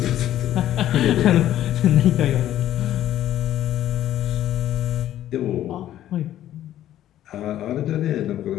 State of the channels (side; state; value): right; quieter; 12.4 dB